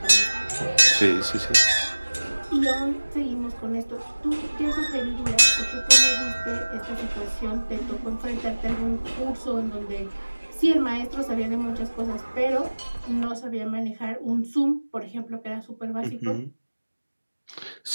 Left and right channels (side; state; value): both; inverted; correlation -1.00